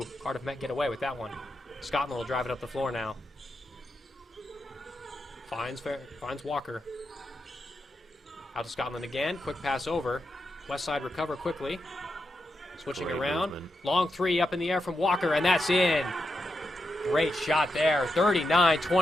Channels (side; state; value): both; normal; correlation 0.86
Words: Cardiff Met get away with that one. Scotland will drive it up the floor now. Finds Walker. Out to Scotland again, quick pass over. Westside recover quickly. Switching Great around. movement. Long 3 up in the air from Walker, and that's in. Great shot there.